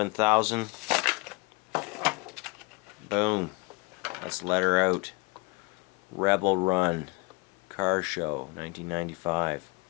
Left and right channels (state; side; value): quieter; right; 28.4 dB